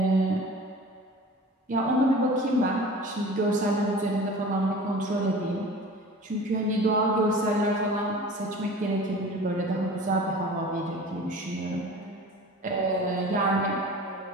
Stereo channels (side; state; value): both; normal; correlation 0.40